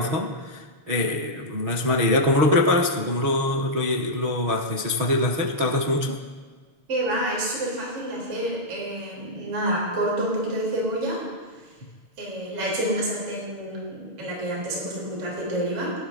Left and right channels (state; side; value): late; left; 6.4 ms